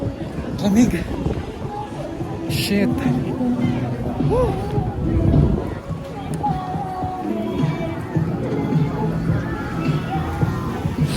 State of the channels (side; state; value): both; identical; correlation 1.00